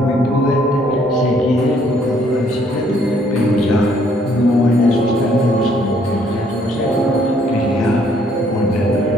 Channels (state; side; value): normal; both; correlation 0.65